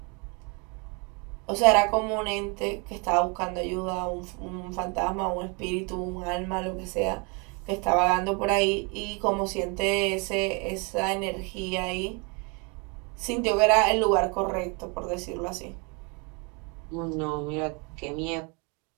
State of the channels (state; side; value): quieter; left; 32.2 dB